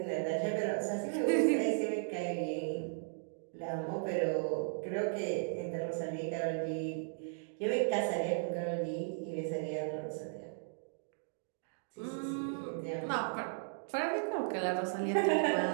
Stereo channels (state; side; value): silent; left; digital silence